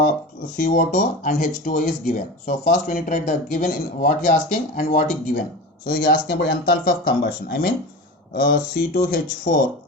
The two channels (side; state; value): both; normal; correlation 0.29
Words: and H2O is given. So first we need to write the given in what he asking and what he given. So he asking about enthalpy of combustion. I mean C2H4